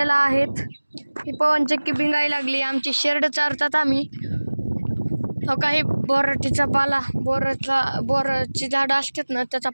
आहेत. ही पवनचक्की भिंगायला लागली. आमची शेरड चारतात आम्ही. हो काही बोराटीचा पाला, बोराची झाडं असतात ना, त्याचा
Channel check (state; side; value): inverted; both; correlation -1.00